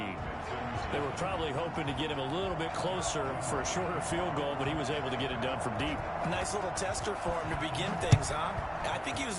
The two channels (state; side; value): identical; both; correlation 1.00